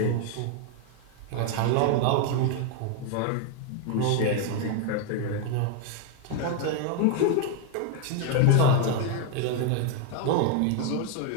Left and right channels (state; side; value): different; both; correlation 0.00